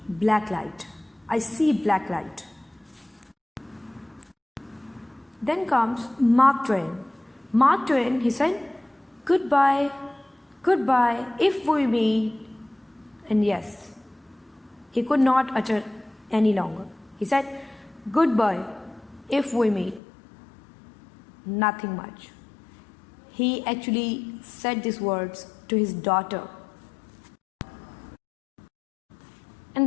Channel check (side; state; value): right; drops out; at 20.0 s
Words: black light. I see black light. Then comes Mark Twain. Mark Twain, he said, goodbye, goodbye, if we meet. And yes, he could not utter any longer. He said, goodbye, if we meet. Nothing much. He actually said these words to his daughter. And